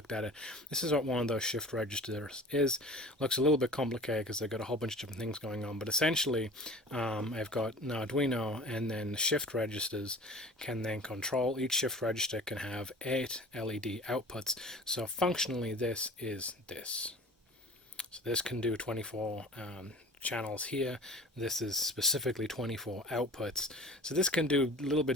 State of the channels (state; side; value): normal; both; correlation 0.41